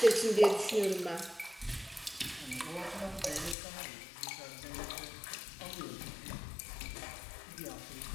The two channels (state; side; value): drops out; right; at 3.6 s